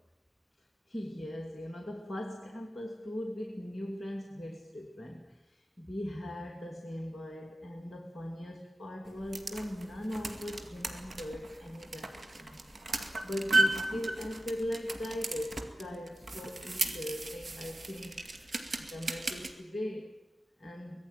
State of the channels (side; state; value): both; normal; correlation 0.93